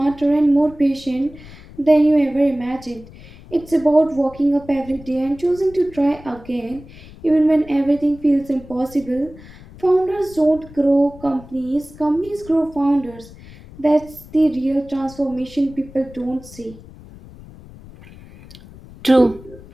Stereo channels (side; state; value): left; noise; rumble, 19 dB below the sound